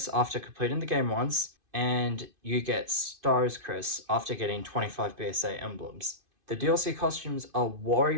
after completing the game once, and you get Stars Chris after getting 25 BSA emblems. The DLC costumes are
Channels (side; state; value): left; late; 2.5 ms